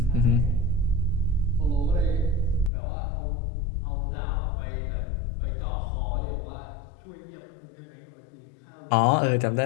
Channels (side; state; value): right; drops out; at 2.7 s